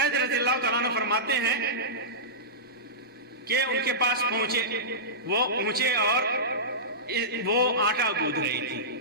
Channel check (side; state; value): both; normal; correlation -0.18